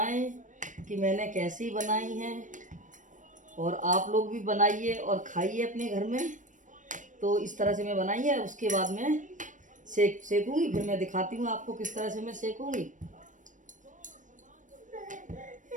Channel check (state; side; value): late; left; 0.37 ms